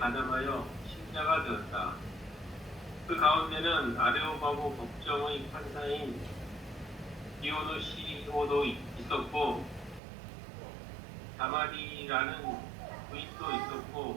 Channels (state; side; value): drops out; left; at 10.0 s